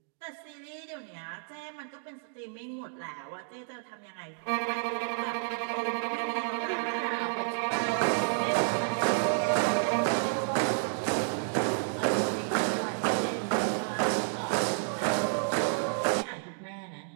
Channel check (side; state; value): left; silent; digital silence